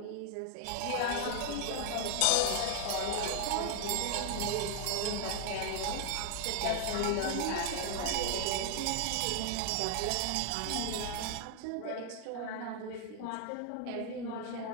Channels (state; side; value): different; both; correlation 0.00